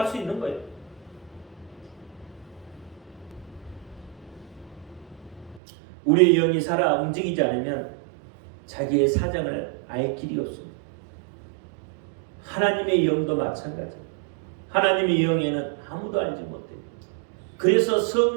수 있는 거예요. 우리의 영이 살아 움직이지 않으면 자기의 사정을 알 길이 없습니다. 하나님의 영도 마찬가지예요. 하나님의 영에는 아무도 알지 못해요. 그래서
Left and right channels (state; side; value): drops out; left; at 5.6 s